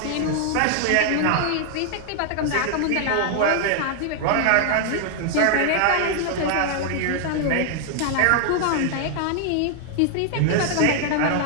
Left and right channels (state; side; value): different; both; correlation 0.00